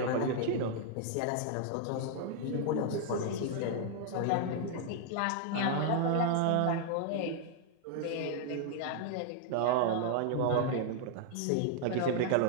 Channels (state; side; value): different; both; correlation 0.00